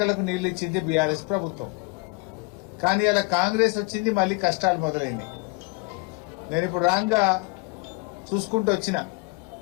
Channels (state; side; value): quieter; right; 28.4 dB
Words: నీళ్లు ఇచ్చింది బీఆర్ఎస్ ప్రభుత్వం. కానీ అలా కాంగ్రెస్ వచ్చింది, మళ్లీ కష్టాలు మొదలైనాయి. నేను ఇప్పుడు రాంగా చూసుకుంటూ వచ్చిన